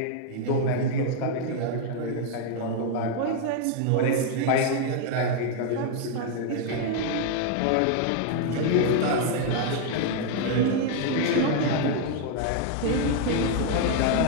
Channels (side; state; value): both; different; correlation 0.00